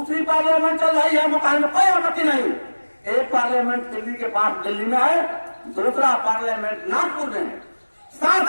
पार्लियामेंट चल रही है, मुकाबले में कोई आपत्ति नहीं। एक पार्लियामेंट दिल्ली के पास दिल्ली में है, दूसरा पार्लियामेंट नागपुर में है।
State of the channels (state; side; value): inverted; both; correlation -1.00